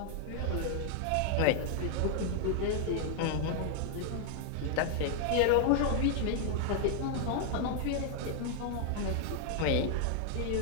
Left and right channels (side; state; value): both; different; correlation 0.00